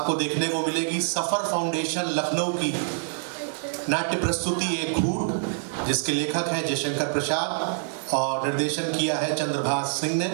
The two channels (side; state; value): left; silent; digital silence